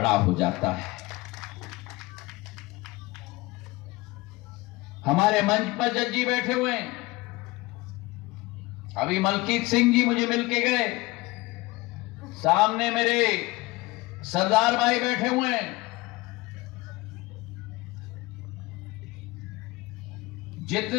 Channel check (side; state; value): right; quieter; 21.6 dB